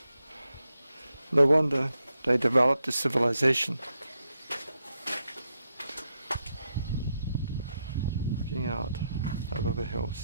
No wonder they developed a civilization. Looking out over the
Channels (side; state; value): both; inverted; correlation -0.84